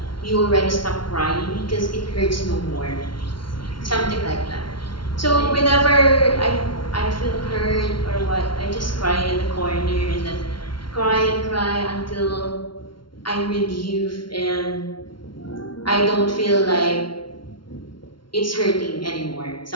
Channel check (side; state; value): right; late; 0.73 ms